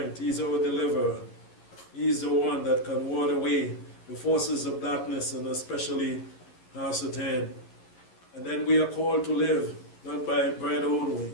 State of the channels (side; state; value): right; late; 11 ms